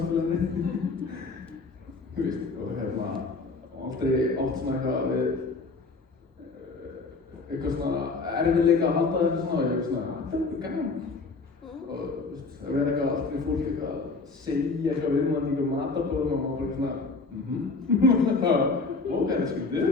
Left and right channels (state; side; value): quieter; right; 4.0 dB